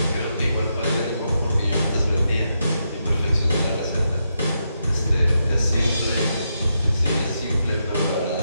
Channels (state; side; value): inverted; both; correlation -0.83